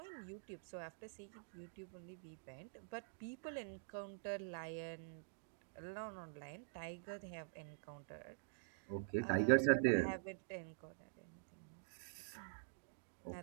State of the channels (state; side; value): silent; left; digital silence